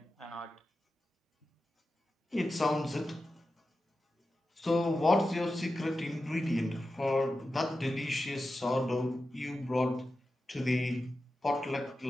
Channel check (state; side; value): normal; both; correlation 0.92